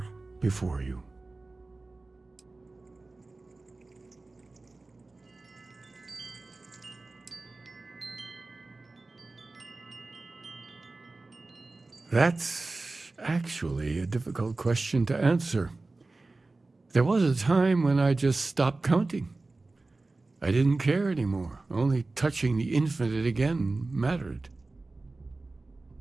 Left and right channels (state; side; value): quieter; left; 3.3 dB